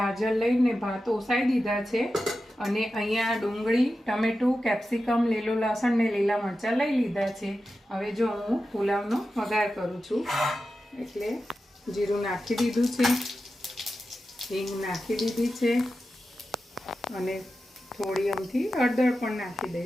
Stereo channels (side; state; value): both; normal; correlation 0.92